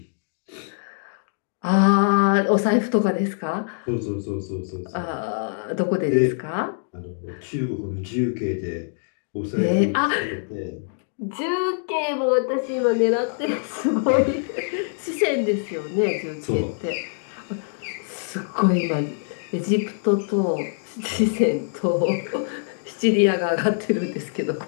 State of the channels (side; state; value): right; silent; digital silence